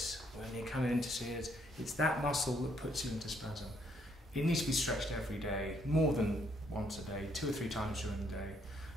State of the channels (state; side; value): normal; both; correlation 0.70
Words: When you're coming in to see it, it's that muscle that puts you into spasm. It needs to be stretched every day, more than once a day, 2 or 3 times during the day,